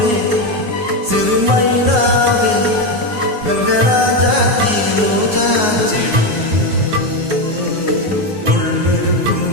சிறுமைனாவே கங்கராஜாத்தி ரோஜா செடி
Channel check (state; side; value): late; left; 9.5 ms